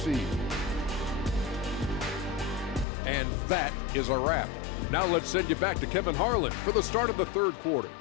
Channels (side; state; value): right; drops out; at 2.9 s